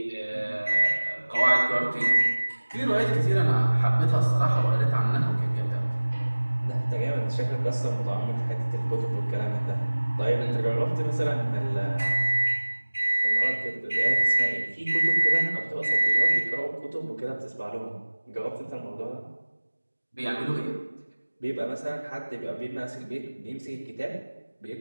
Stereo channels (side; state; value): both; inverted; correlation -1.00